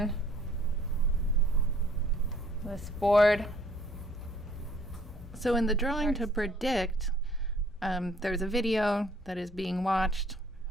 this board. So in the drawing to predict, there's a video that is being watched.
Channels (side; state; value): both; normal; correlation 0.60